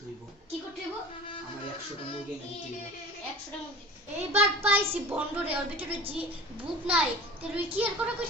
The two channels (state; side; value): normal; both; correlation 0.41